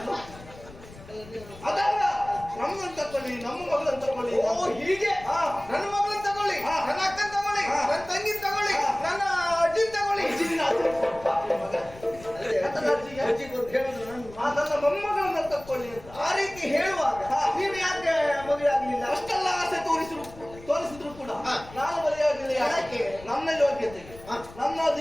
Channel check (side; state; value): left; noise; rumble, 19 dB below the sound